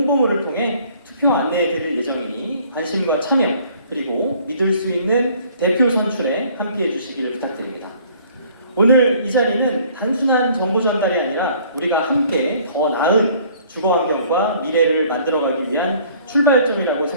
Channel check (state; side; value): inverted; both; correlation -0.57